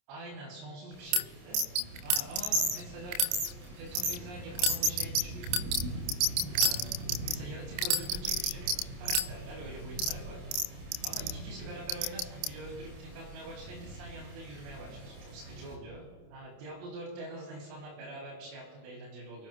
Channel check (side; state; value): left; late; 28 ms